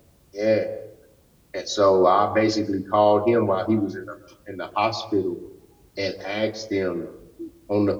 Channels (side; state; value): both; identical; correlation 1.00